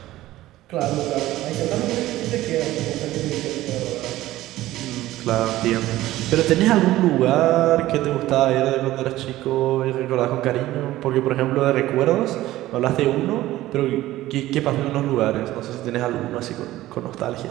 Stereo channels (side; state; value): left; quieter; 15.8 dB